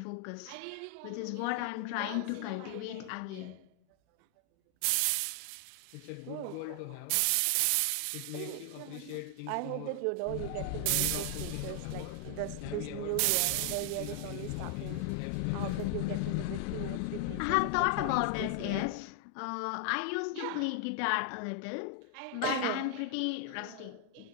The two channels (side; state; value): both; different; correlation 0.00